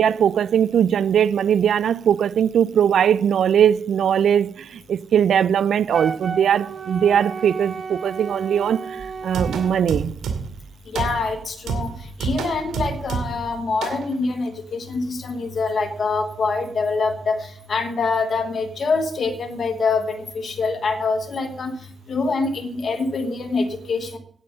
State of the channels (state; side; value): quieter; left; 3.9 dB